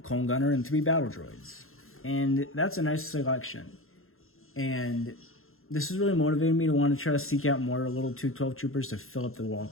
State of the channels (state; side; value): late; right; 0.61 ms